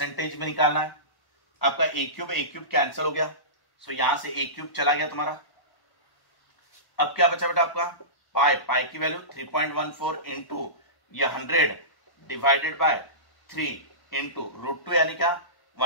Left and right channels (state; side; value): late; right; 1.1 ms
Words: में निकालना है। आपका ए क्यूब कैंसिल हो गया, सो यहां से ए क्यूब चला गया तुम्हारा। अब क्या बचा बेटा आपका, पाई की वैल्यू 3.14 इंटू ये 100 डिवाइडेड बाय 3 इंटू √2 यानी क्या